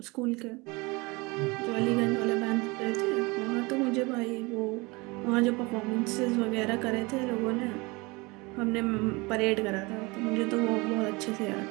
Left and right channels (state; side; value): quieter; left; 25.4 dB